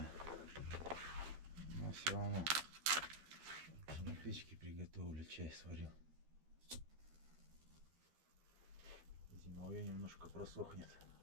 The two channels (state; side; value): late; left; 13 ms